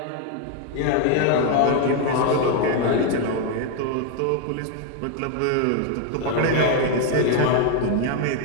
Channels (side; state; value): both; different; correlation 0.01